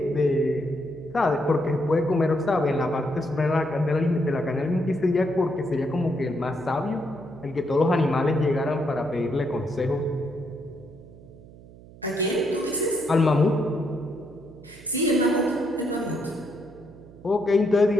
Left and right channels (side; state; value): right; noise; hum, 20 dB below the sound